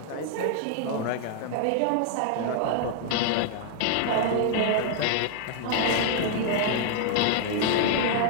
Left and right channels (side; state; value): both; different; correlation 0.00